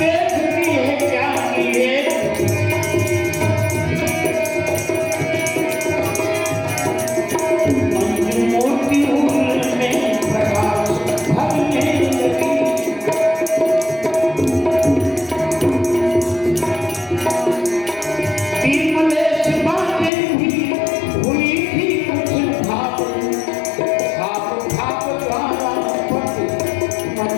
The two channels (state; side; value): drops out; right; at 20.1 s